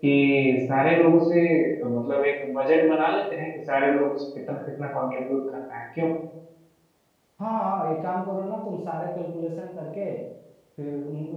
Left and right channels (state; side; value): identical; both; correlation 1.00